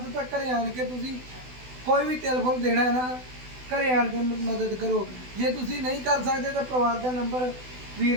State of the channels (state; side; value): late; left; 16 ms